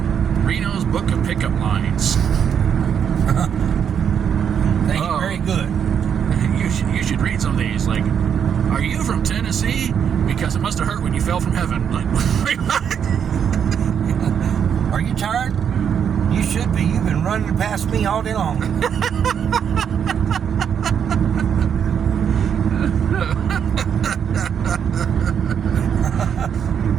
Reno's Book of Pickup Lines. They ain't very good. You should read some of these. Like, are you from Tennessee? Because it must have hurt when you fell from heaven. Like, Are you tired? You should be. You've been running past me all day long.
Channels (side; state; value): left; quieter; 8.0 dB